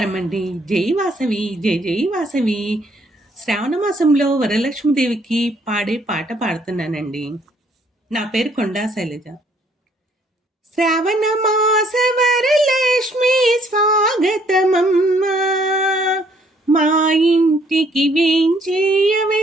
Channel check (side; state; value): both; normal; correlation 0.65